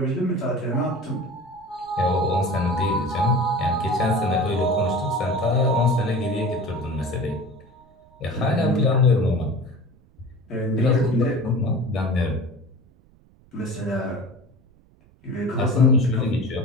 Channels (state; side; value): noise; right; rumble, 29 dB below the sound